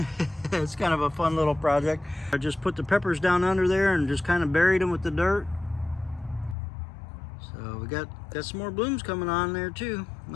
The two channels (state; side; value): drops out; right; at 6.6 s